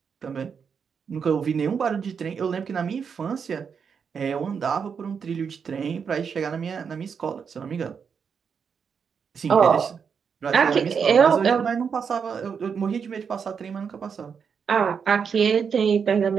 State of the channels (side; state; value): left; quieter; 6.5 dB